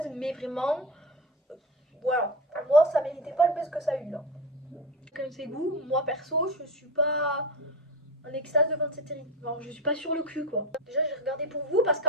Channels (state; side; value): normal; both; correlation 0.23